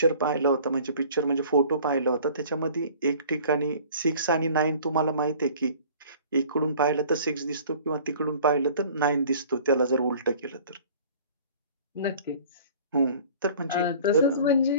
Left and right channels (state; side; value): inverted; both; correlation -0.48